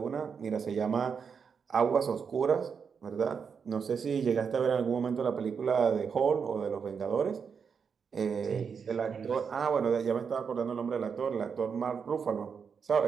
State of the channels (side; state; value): left; quieter; 6.3 dB